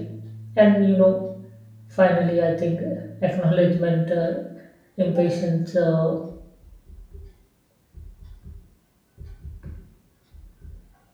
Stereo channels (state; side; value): identical; both; correlation 1.00